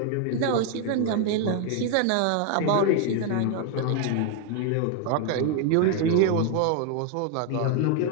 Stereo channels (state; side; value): different; both; correlation 0.01